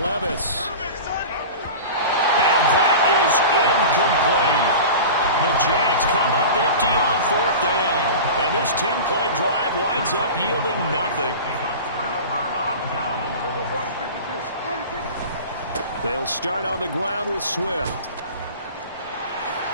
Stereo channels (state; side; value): inverted; both; correlation -0.33